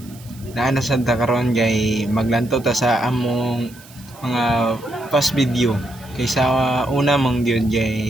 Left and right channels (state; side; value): noise; right; hiss, 22 dB below the sound